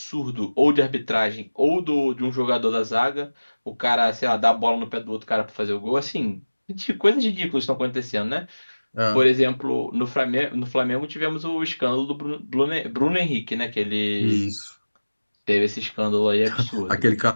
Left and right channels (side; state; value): both; inverted; correlation -1.00